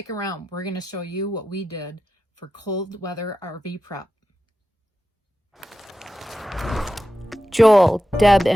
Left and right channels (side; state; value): both; normal; correlation 0.92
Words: around, we're gonna show you what we did for cold weather RV prep. Joel, Deb,